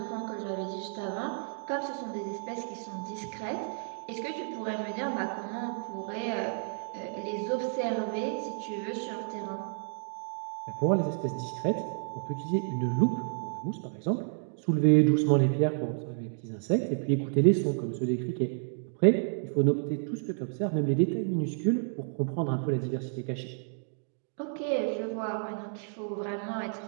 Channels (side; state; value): left; silent; digital silence